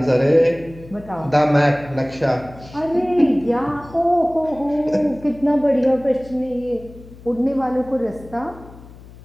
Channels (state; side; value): noise; left; hum, 19 dB below the sound